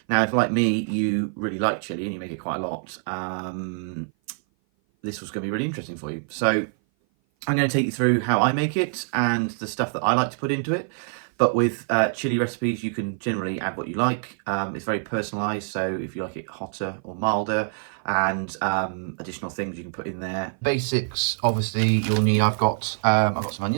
Now, if like me, you really like chili and you make it quite a lot, this was going to be really interesting for you. So I'm going to take you through how I make it and the stuff that I like to put into it. But with chili recipes, you can generally add what you like. It's very personalised, so if you like it hotter or milder, and additional things you can put in there. Basics, obviously, you'll need. I've got some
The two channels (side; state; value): left; silent; 57 dB below the other